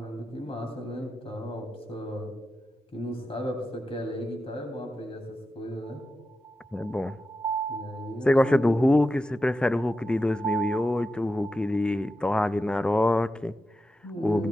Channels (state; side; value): normal; both; correlation 0.90